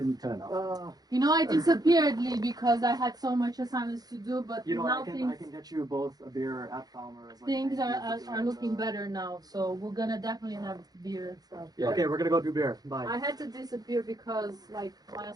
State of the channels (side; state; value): left; late; 0.19 ms